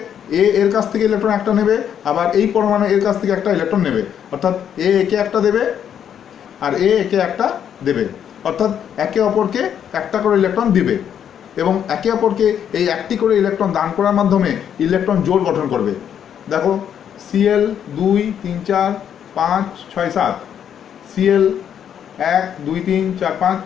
এ এর কাছ থেকে ইলেকট্রন একটা নেবে, আবার এই পরমাণু এর কাছ থেকে একটা ইলেকট্রন নেবে, অর্থাৎ এ একে একটা দেবে আর এ একে একটা দেবে, অর্থাৎ একে অপরকে একটা করে ইলেকট্রন দিবে এবং একে অপরকে এই একটি করে ইলেকট্রন দান করার মাধ্যমে ইলেকট্রন জোড় গঠন করবে। দেখো Cl 2 3 4 5 6 7, Cl 1 2 3 4 5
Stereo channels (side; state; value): right; quieter; 9.0 dB